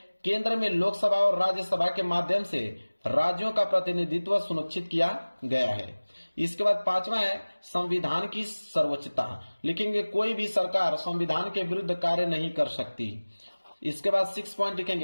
केंद्र में लोकसभा और राज्यसभा के माध्यम से राज्यों का प्रतिनिधित्व सुनिश्चित किया गया है। इसके बाद पांचवा है संविधान की सर्वोच्चता, लिखेंगे कोई भी सरकार संविधान के विरुद्ध कार्य नहीं कर सकती। इसके बाद 6 पॉइंट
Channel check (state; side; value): inverted; both; correlation -1.00